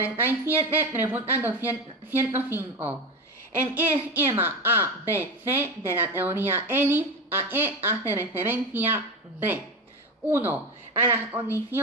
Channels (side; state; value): both; normal; correlation 0.21